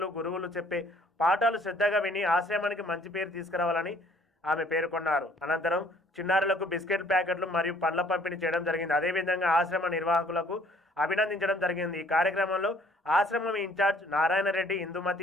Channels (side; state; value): both; normal; correlation 0.59